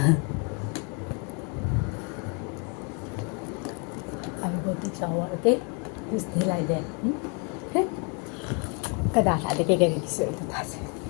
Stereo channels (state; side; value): quieter; right; 36.1 dB